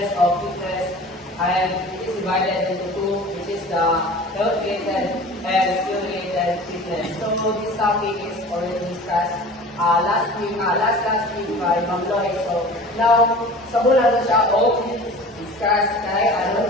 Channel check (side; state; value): both; normal; correlation 0.41